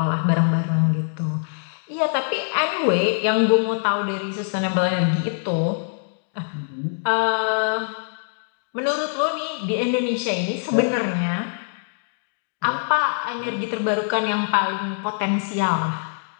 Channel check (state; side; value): silent; right; digital silence